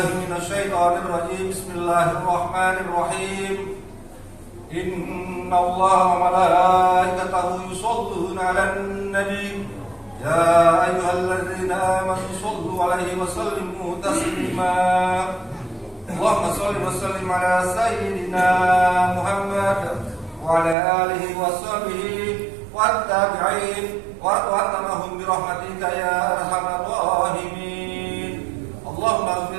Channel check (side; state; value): left; drops out; at 20.8 s